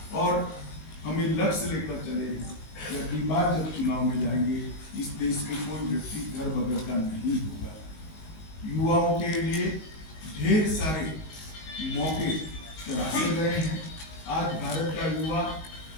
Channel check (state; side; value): late; right; 19 ms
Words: और हमें लक्ष्य लेकर चले हैं कि अगली बार जब चुनाव में जाएंगे, इस देश में कोई व्यक्ति घर बगैर का नहीं होगा। युवाओं के लिए ढेर सारे मौके तराशे गए हैं। आज भारत का युवा